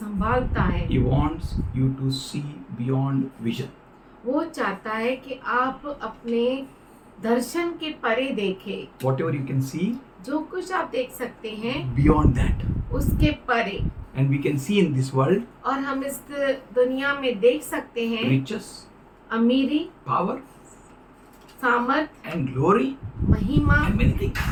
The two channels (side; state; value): both; identical; correlation 1.00